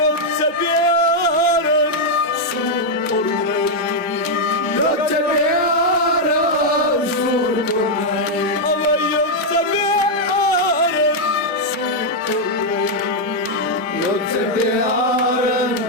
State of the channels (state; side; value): normal; both; correlation -0.01